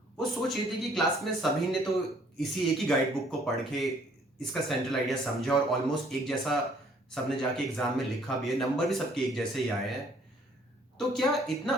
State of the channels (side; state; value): both; normal; correlation 0.61